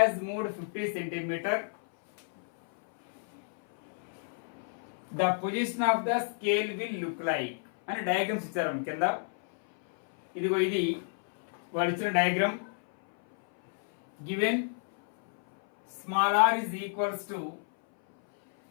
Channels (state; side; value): silent; right; 58 dB below the other